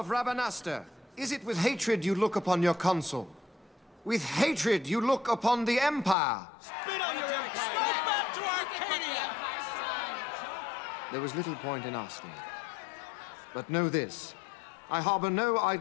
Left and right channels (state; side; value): drops out; right; at 6.2 s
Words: Rabanastre, is it with hatred you look upon your consul? With hatred you look upon the Empire? Spit on your empire! Go back to Arcadia! There was little point in asking. But know this, I harbor no